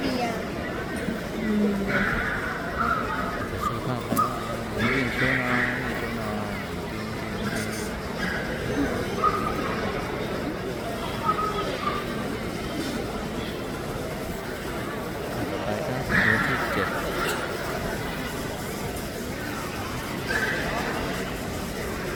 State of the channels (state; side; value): identical; both; correlation 1.00